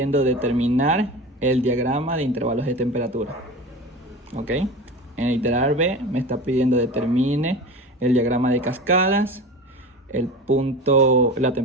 determinar el diagrama de intervalos de temperatura. Ok. En el literal B me está pidiendo determine el diagrama de cascadas, el punto, la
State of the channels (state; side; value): normal; both; correlation 0.31